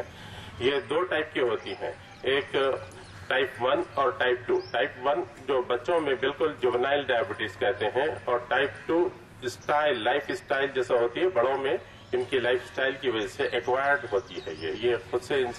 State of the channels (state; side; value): identical; both; correlation 1.00